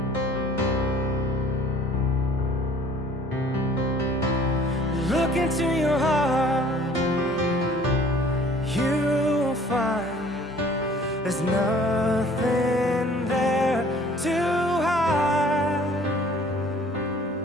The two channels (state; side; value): normal; both; correlation 0.53